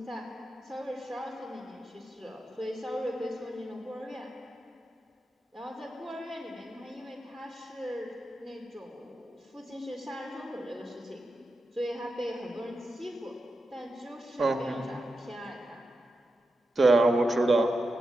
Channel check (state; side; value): normal; both; correlation 0.89